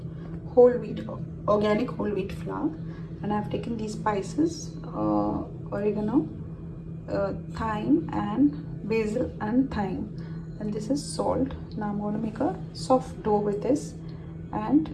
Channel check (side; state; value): both; identical; correlation 1.00